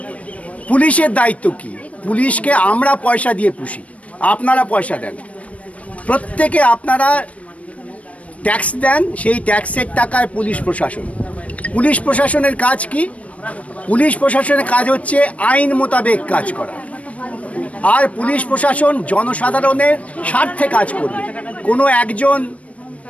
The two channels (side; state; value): right; late; 0.065 ms